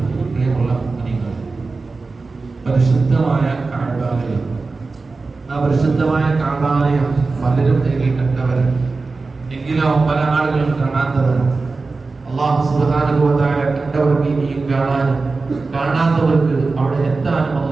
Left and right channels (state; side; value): quieter; left; 3.9 dB